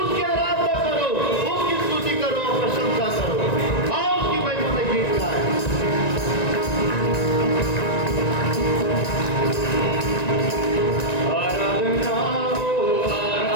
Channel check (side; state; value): right; late; 1.9 ms